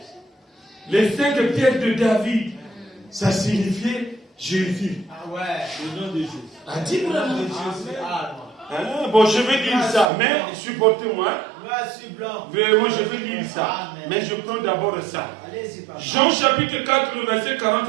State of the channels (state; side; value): drops out; left; at 10.1 s